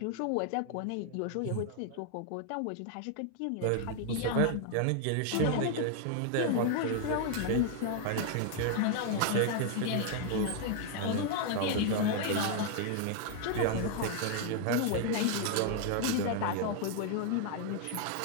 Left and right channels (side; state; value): both; different; correlation 0.00